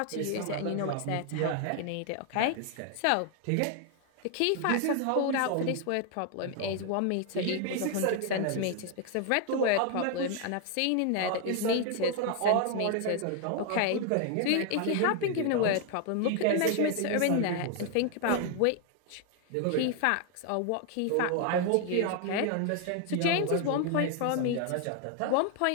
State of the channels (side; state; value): both; different; correlation 0.00